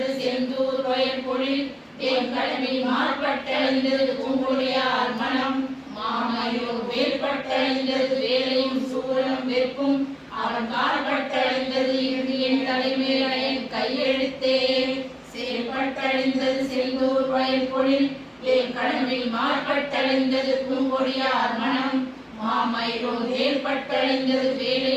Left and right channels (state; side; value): identical; both; correlation 1.00